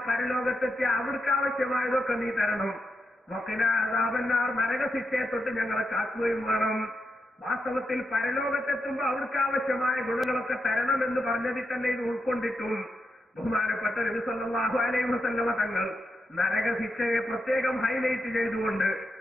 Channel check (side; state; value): both; normal; correlation 0.85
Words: പരലോകത്തെത്തിയ അവിടേക്ക് ആവശ്യമായതൊക്കെ നീ തരണം. വഖിനാ അദാബന്നാർ, നരകശിക്ഷയെ തൊട്ട് ഞങ്ങളെ കാക്കുകയും വേണം. വാസ്തവത്തിൽ പരലോകത്തെത്തുമ്പോൾ അവർക്ക് ആവശ്യമായ ഗുണങ്ങളൊക്കെ തരണം എന്ന് പറഞ്ഞതിൽ തന്നെ ഇത് ഉൾക്കൊണ്ടിട്ടും ബഹുമാനപ്പെട്ട നബി സല്ലല്ലാഹു അലൈഹി വസല്ലം തങ്ങൾ നരകശിക്ഷയെ പ്രത്യേകം ഹൈലൈറ്റ് ചെയ്തുകൊണ്ട്